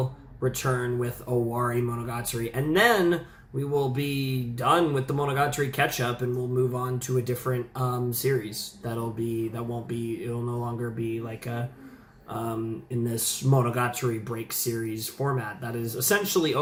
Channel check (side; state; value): both; identical; correlation 1.00